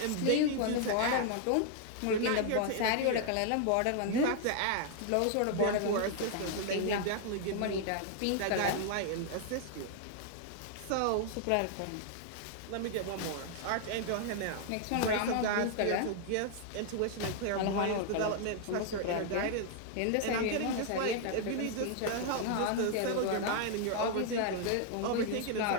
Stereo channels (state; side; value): different; both; correlation 0.00